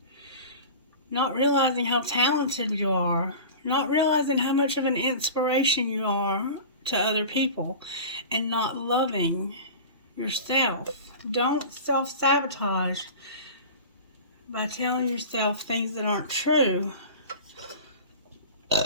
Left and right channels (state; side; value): inverted; both; correlation -0.35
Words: Not realizing how talented you are. Not realizing how much of an inspiration you are to other people. And not loving yourself. Don't self-sabotage by telling yourself things that aren't true.